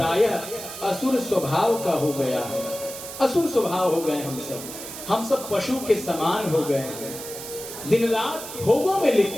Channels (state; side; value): noise; right; hiss, 10 dB below the sound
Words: असुर स्वभाव का हो गया है। असुर स्वभाव हो गए हम सब पशु के समान हो गए हैं। दिन रात भोगों में